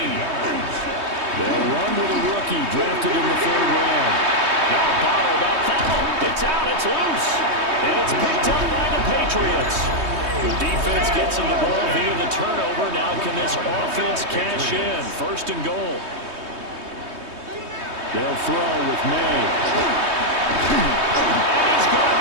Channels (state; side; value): late; left; 3.2 ms